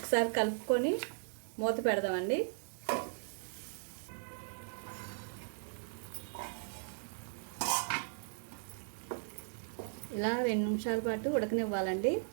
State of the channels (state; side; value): silent; left; digital silence